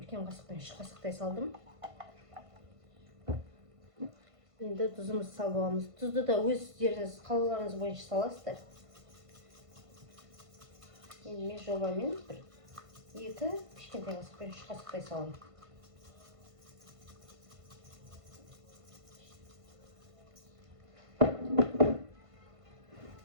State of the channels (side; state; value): left; late; 1.5 ms